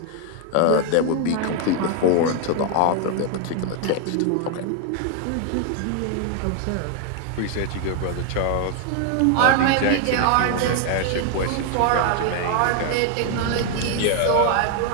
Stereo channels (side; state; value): both; different; correlation 0.00